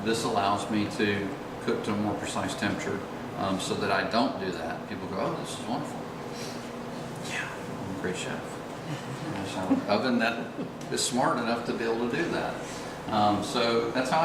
This allows me to cook to a more precise temperature, so that I don't do that. People go, oh, this is wonderful. Yeah, I'm a great chef. There's an oven that is smart enough to be able to do that. So that's how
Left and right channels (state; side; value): identical; both; correlation 1.00